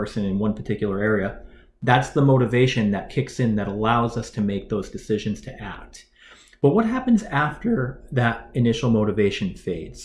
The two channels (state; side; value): identical; both; correlation 1.00